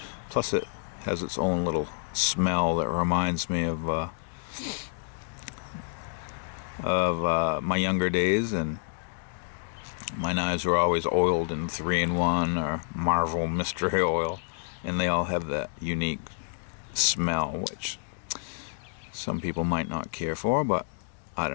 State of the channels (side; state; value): right; silent; digital silence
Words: Plus it has its own little smell that reminds me of my younger days, and my knives were always oiled in 3-in-1 or Marvel mystery oil, and they all have that unique smell which some people might not care for, but I